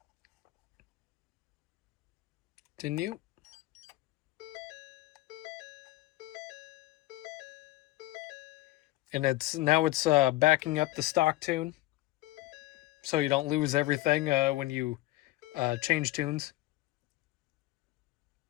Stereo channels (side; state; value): right; quieter; 17.8 dB